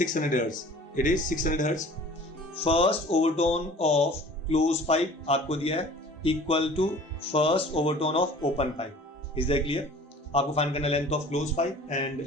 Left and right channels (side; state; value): both; normal; correlation 0.46